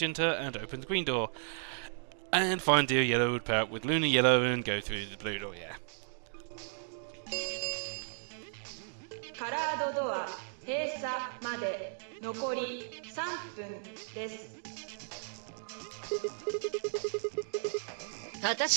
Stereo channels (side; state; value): left; silent; digital silence